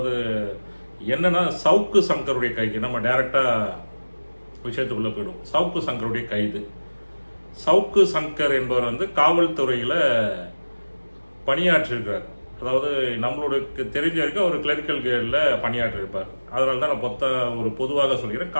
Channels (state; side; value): inverted; both; correlation -1.00